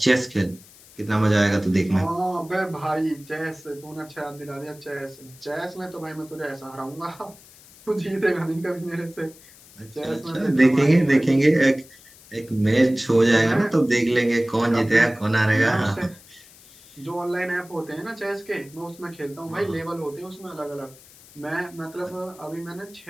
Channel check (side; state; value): left; noise; hiss, 23 dB below the sound